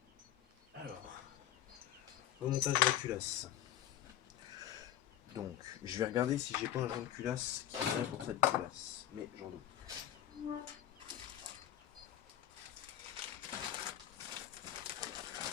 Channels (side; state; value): right; quieter; 11.4 dB